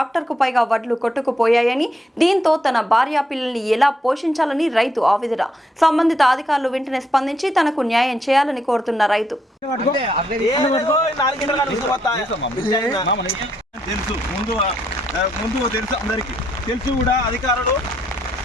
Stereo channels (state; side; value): normal; both; correlation 0.76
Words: పైగా వడ్లు కొట్టుకుపోయాయని, దీంతో తన భార్య పిల్లల్ని ఎలా పోషించాలని రైతు ఆవేదన. సంబంధిత అధికారులు వెంటనే స్పందించి తనకు న్యాయం చేయాలని కోరుతున్న రైతు. ముందు తెలుసు అందరికి తెలుసు కూడా అధికారులు